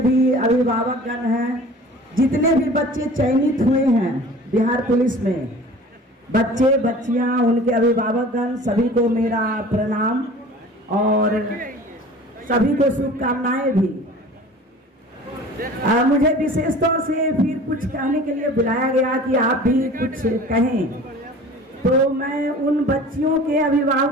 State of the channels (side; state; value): both; normal; correlation 0.43